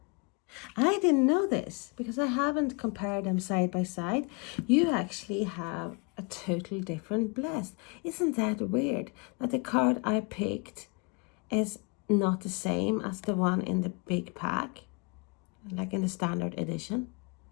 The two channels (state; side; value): quieter; right; 31.2 dB